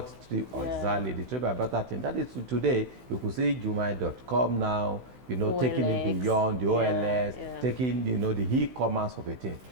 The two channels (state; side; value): late; left; 16 ms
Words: exactly, the trade by barter thing. That is today, you could see Jumia.com now, taking it beyond the OLS, taking, the e-commerce of a thing.